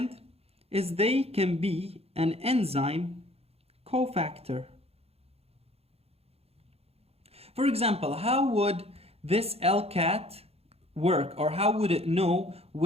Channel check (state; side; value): late; left; 0.29 ms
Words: is they can be an enzyme cofactor. For example, how would this LCAT work, or how would it know